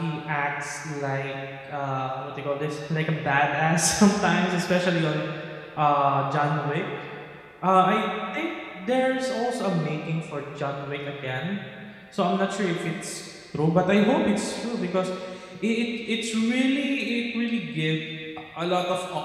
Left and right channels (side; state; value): both; identical; correlation 1.00